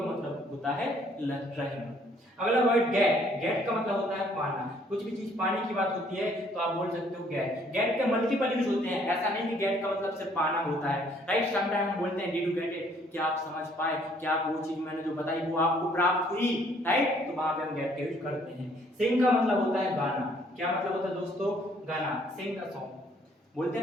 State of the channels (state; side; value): normal; both; correlation 0.63